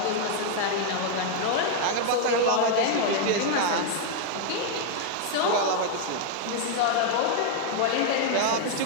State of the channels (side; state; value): both; different; correlation 0.00